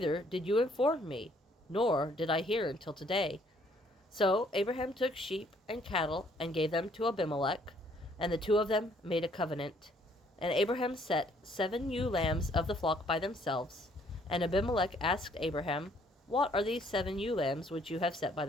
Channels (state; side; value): normal; both; correlation 0.64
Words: did you inform me, nor did I hear until today. So Abraham took sheep and cattle and gave them to Abimelek, and the two of them made a covenant. And Abraham set 7 ewe lambs of the flock by themselves. And Abimelek asked Abraham, What are these 7 ewe lambs which you have set by